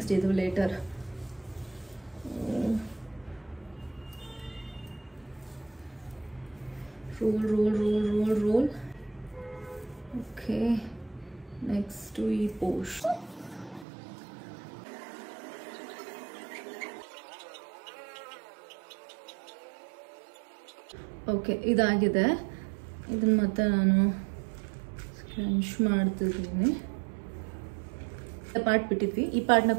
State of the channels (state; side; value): drops out; left; at 13.9 s